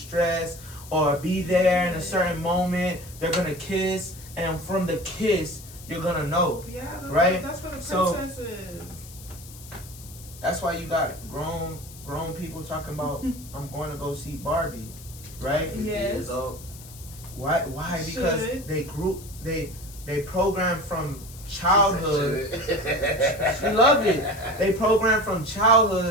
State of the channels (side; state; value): left; noise; hiss, 18 dB below the sound